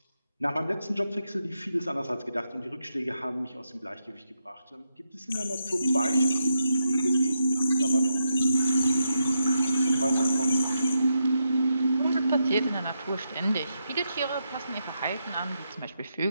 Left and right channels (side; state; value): both; inverted; correlation -0.83